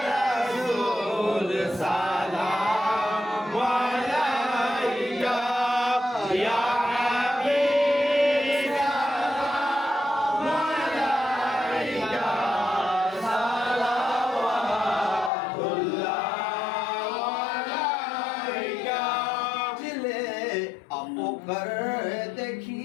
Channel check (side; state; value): right; drops out; at 15.3 s